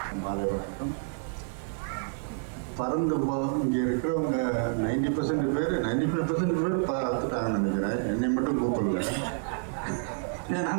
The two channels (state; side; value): silent; left; 59 dB below the other